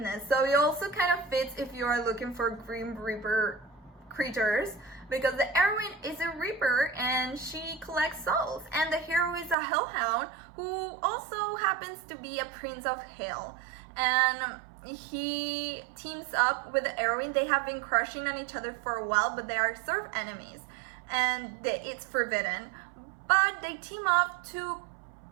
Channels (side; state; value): left; drops out; at 9.6 s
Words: so it also kind of fits if you are looking for Grim Reaper creatures because the heroine is a reaper and she collects souls, and the hero is a hellhound who also happens to be a prince of hell, and he teams up with the heroine. They have been crushing on each other for a while, but they are sort of enemies, and it's forbidden, but they team up to